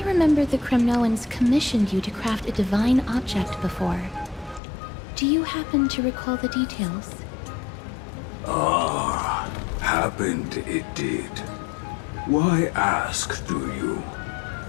remember the Kremnoans commissioned you to craft a divine object before. Do you happen to recall the details? Ah, happened it did. Why ask, do you?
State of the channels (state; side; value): drops out; right; at 4.6 s